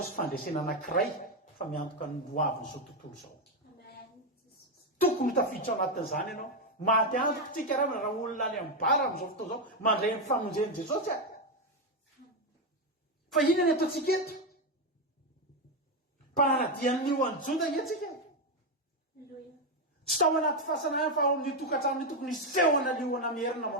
fandresena anankiray fa miantoka ny loaviny zao tontolo zao. Tokony tafiditra anatin'izany ianao. Maty antoko tsika raha olona any amin'ny bara amin'izao fotoana zao mandray ny famonjen'i Jesosy fa inona ny ataontsika eto? Mpanaradian'ny liona Joda etsika. Tsy tao anaty fahasanana fa ao amin'ny tokantrano tokony isehona liona mierina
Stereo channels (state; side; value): normal; both; correlation 0.07